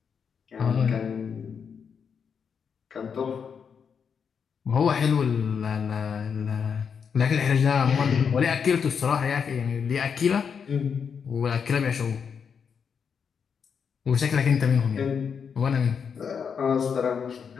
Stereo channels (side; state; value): right; quieter; 6.6 dB